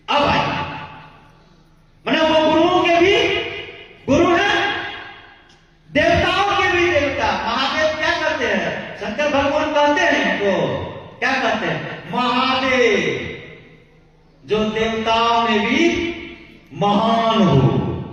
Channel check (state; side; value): identical; both; correlation 1.00